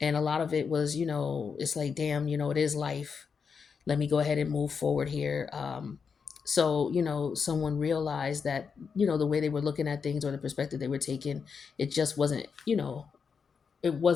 and a lot of it was, it's like, damn, it is life. Let me go ahead and move forward here. So, someone realized that, the way they were looking at things or the perspective they were taking, it just wasn't, it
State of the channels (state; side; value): quieter; right; 5.9 dB